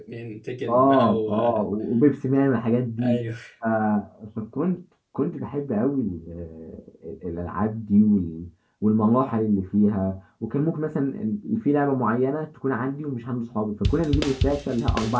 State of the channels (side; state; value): both; identical; correlation 1.00